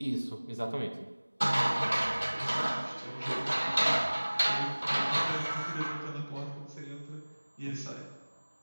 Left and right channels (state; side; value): inverted; both; correlation -1.00